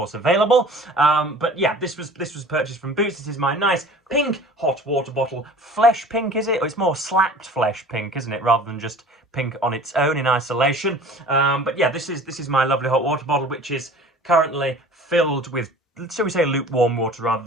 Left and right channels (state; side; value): normal; both; correlation 0.44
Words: available. But yeah, this was purchased from Boots. This is my nice pink hot water bottle. Flesh pink, is it? Or it's more slapped flesh pink, isn't it, rather than just pink on its own in isolation. But yeah, this is my lovely hot water bottle, which is currently filled with, shall we say, lukewarm water rather